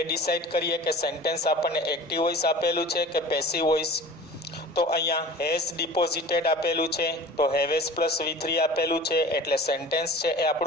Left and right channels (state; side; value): normal; both; correlation 0.40